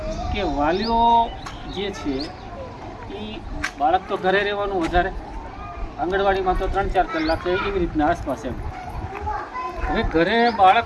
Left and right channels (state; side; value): identical; both; correlation 1.00